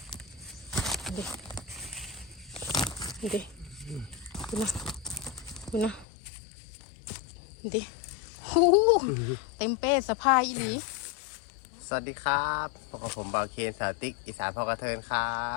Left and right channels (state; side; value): drops out; right; at 6.1 s